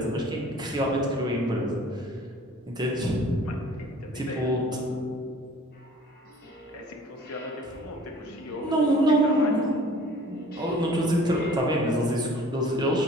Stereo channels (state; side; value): normal; both; correlation 0.50